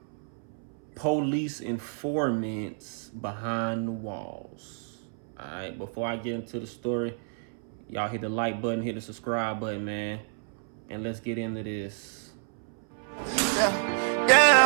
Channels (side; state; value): left; silent; 58 dB below the other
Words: police informants behind the walls. Alright, before I get into the story, y'all hit the like button, hit the subscribe button, man. And let's get into this.